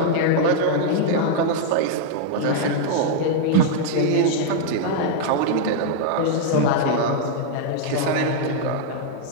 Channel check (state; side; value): different; both; correlation 0.00